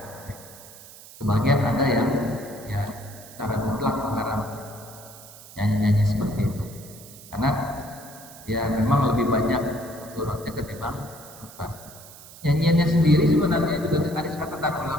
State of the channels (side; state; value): right; noise; hiss, 18 dB below the sound